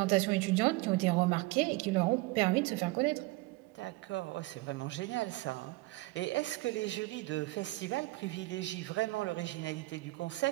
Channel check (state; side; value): quieter; left; 21.4 dB